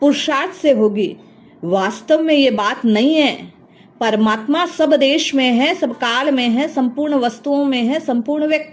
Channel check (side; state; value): both; identical; correlation 1.00